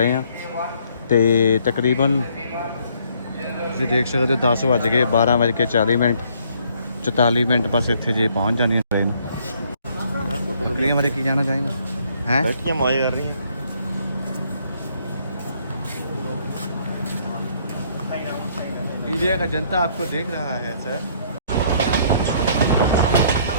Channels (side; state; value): both; inverted; correlation -0.65